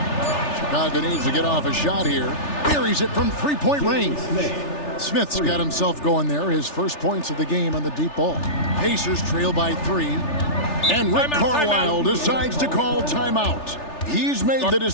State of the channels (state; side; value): late; right; 3.4 ms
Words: Chicago needs to get off a shot here. Buries it from three-point range. Smith's got himself going there. His first points of the game on the deep ball. Pacers trail by 3. And Rick Carlisle decides to call timeout. He's made the